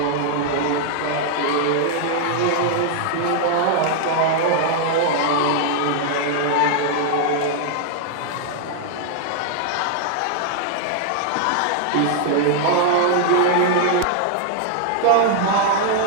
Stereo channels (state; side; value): different; both; correlation 0.00